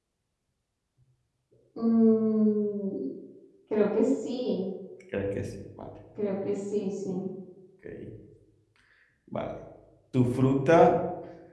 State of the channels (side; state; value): both; identical; correlation 1.00